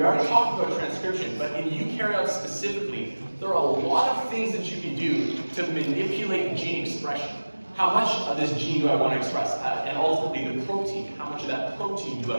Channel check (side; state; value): both; inverted; correlation -1.00